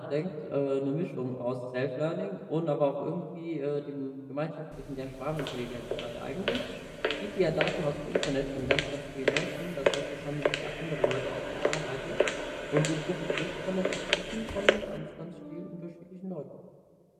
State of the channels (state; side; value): identical; both; correlation 1.00